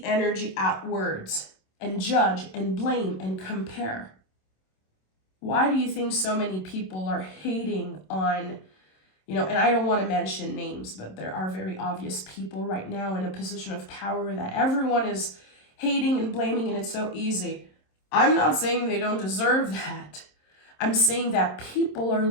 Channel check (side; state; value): right; late; 27 ms